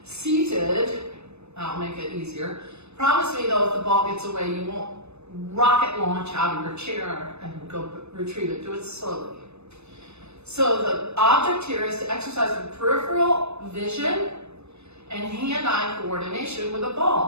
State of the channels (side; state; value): left; late; 0.81 ms